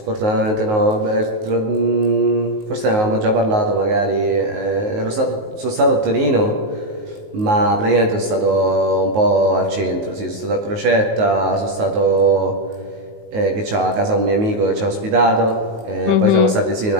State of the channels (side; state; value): left; late; 19 ms